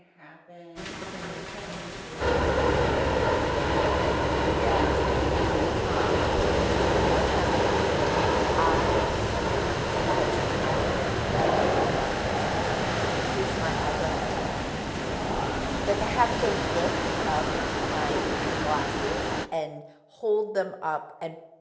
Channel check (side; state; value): both; identical; correlation 1.00